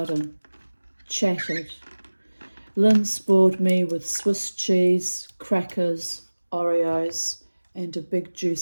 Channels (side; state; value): both; inverted; correlation -1.00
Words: chatted. Lynn spoiled me with Swiss cheese, crackers, Oreos, and a big